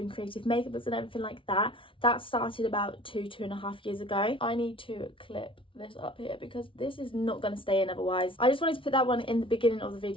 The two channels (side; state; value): right; late; 0.25 ms